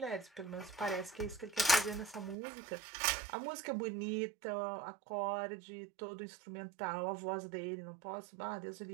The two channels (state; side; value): drops out; left; at 2.4 s